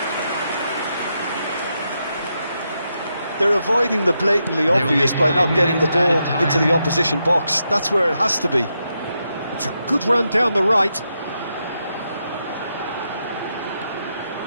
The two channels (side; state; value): both; inverted; correlation -0.83